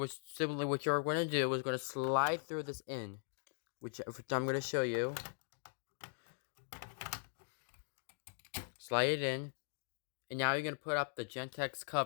you're going to do is going to slide through this in, which I'm going to show you. Slide it in, and now you're going to put up the Gentex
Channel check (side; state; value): right; silent; digital silence